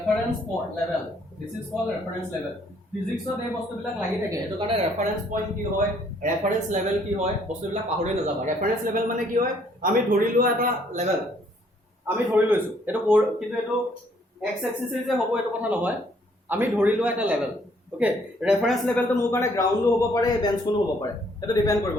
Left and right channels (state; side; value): normal; both; correlation 0.65